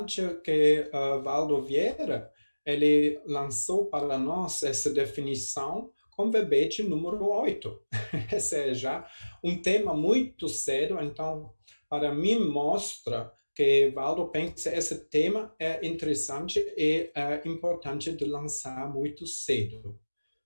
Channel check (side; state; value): both; inverted; correlation -1.00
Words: que Valdo Vieira ele lançou para nós essa definição com verbete número 8. Esse é já um tema muito sério, então, para mim, mostra que Valdo pensa que esse tema é interessante e importante de lançar muito cedo.